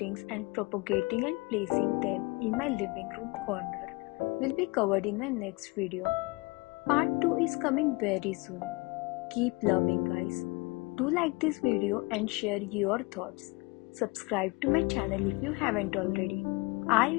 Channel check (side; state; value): right; quieter; 26.0 dB